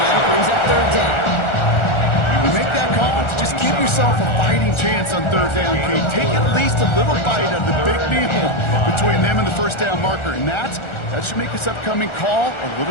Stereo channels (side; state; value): right; late; 1.4 ms